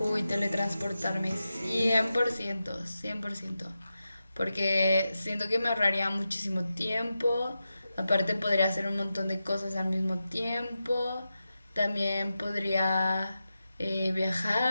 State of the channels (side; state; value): both; inverted; correlation -0.91